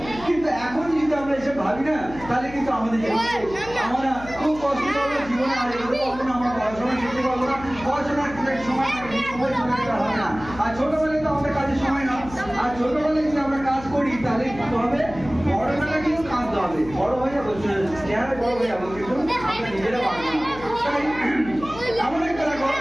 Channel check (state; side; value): noise; left; hum, 15 dB below the sound